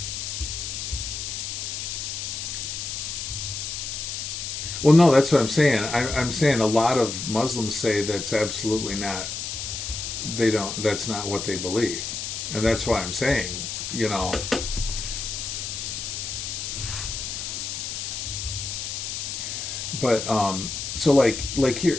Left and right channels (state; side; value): noise; left; hiss, 5 dB below the sound